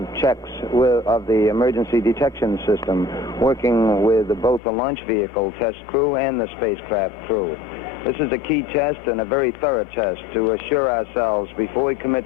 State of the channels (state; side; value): drops out; right; at 4.6 s